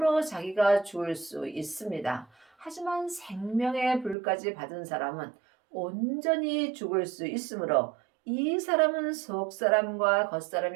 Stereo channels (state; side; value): drops out; left; at 4.2 s